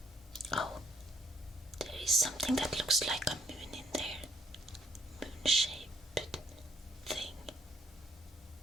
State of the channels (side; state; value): both; normal; correlation 0.67